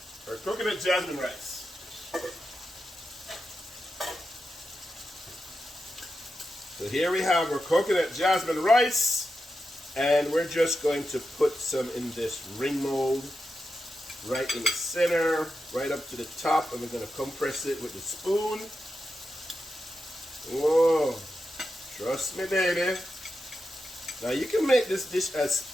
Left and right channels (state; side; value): normal; both; correlation 0.89